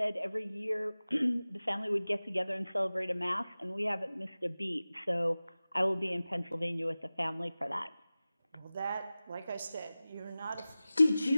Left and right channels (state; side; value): inverted; both; correlation -0.97